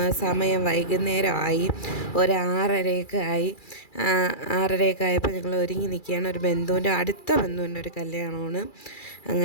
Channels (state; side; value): late; right; 2.3 ms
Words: സമയം വൈകുന്നേരമായി, ഒരു 6:30 ആയി. 6:30 ആയപ്പോൾ ഞങ്ങൾ ഒരുങ്ങി നിൽക്കുകയാണ്. ഒരു അടുത്ത ബന്ധുവിൻ്റെ ഒരു കല്യാണമാണ്.